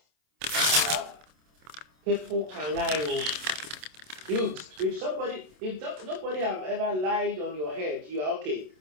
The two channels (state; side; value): late; left; 27 ms